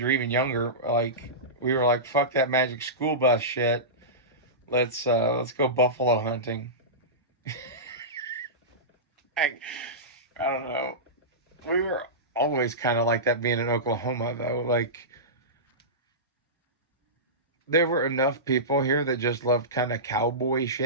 or even younger, like we were like, fuck that Magic School Bus shit. Let's go buffalo hunting. I don't know. We were always kind of like that being in Oklahoma, though. Like, there were enough people here that just loved kind of cowboy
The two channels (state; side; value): normal; both; correlation -0.18